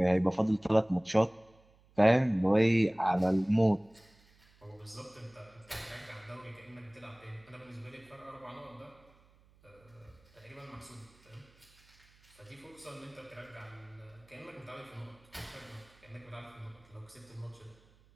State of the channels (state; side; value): noise; right; hum, 29 dB below the sound